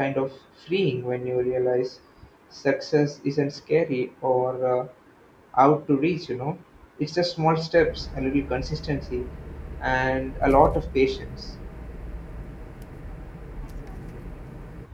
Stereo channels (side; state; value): both; identical; correlation 1.00